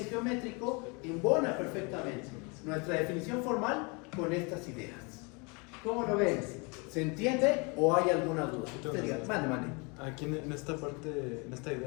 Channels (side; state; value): right; quieter; 30.9 dB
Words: geométrico, embona perfectamente nuestra definición formal con estas ideas. ¿Cómo lo ven? ¿Se entiende o hay alguna duda? Mande. Aquí en esta parte, en esta